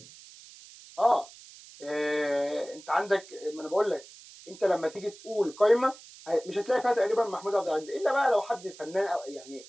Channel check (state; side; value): noise; right; hiss, 20 dB below the sound